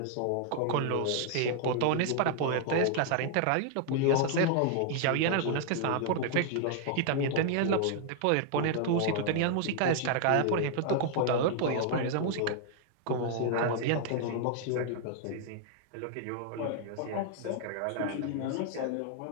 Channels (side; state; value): both; different; correlation 0.00